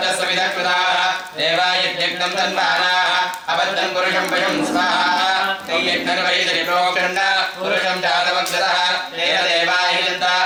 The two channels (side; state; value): both; identical; correlation 1.00